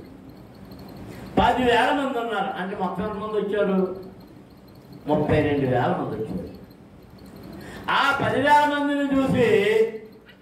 10,000 మంది ఉన్నారు అంటే మొత్తం ఎంతమంది వచ్చారు? 32,000 మంది వచ్చారు. ఆ 10,000 మందిని చూసి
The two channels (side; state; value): both; identical; correlation 1.00